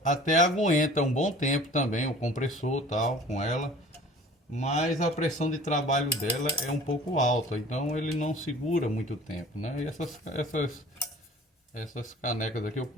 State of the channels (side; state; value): both; normal; correlation 0.46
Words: até aguenta um bom tempo também o compressor tal com ela, mas a pressão de trabalho dela é um pouco alta, então ele não segura muito tempo, né? E essas canecas aqui eu